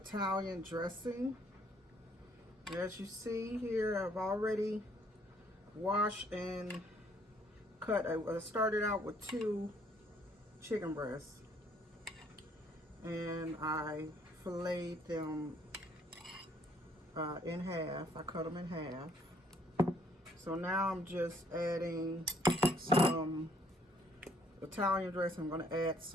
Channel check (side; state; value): both; normal; correlation 0.65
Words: dressing. As you see here, I've already washed and cut. I started out with 2 chicken breasts and I filleted them in half. I cut them in half. So now I'm just adding some Italian dressing. I'm going to add